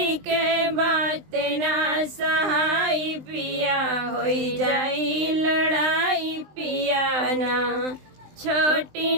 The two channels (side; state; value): left; late; 20 ms